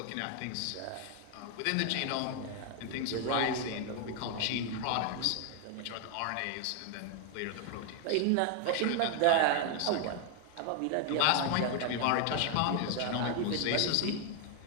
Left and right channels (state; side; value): different; both; correlation 0.00